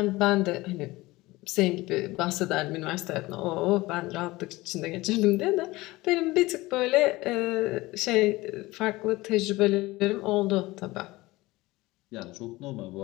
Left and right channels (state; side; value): quieter; right; 20.0 dB